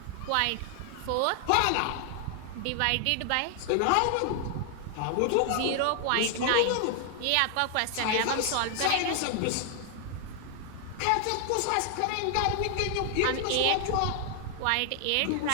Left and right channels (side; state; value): both; different; correlation 0.00